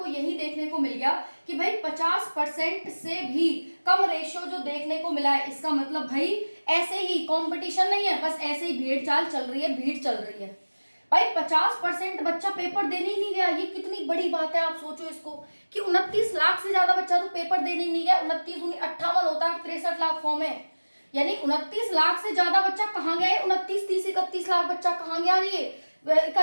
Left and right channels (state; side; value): inverted; both; correlation -1.00